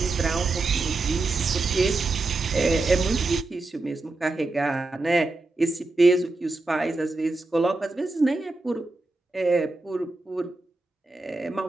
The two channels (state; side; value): quieter; left; 3.2 dB